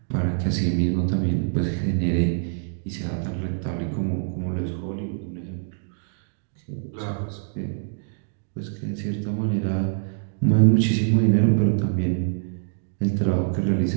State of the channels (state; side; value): silent; left; digital silence